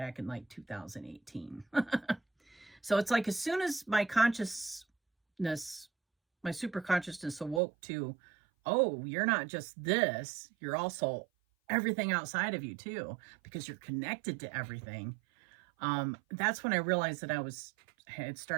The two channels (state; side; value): drops out; left; at 7.6 s